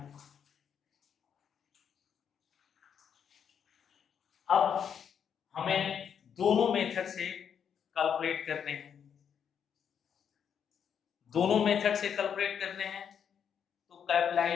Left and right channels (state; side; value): quieter; right; 7.9 dB